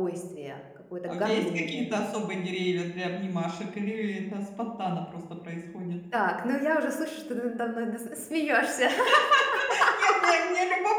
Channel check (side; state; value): both; identical; correlation 1.00